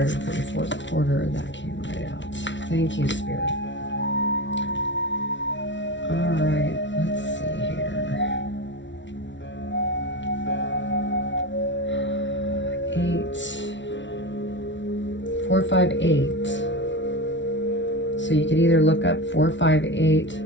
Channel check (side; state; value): right; late; 0.54 ms